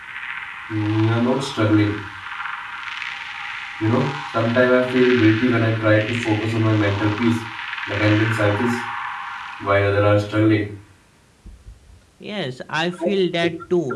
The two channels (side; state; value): both; identical; correlation 1.00